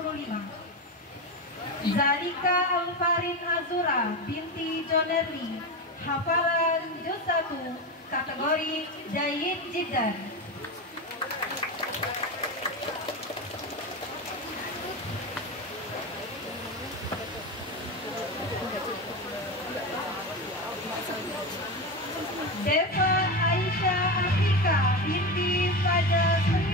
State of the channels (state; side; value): normal; both; correlation 0.19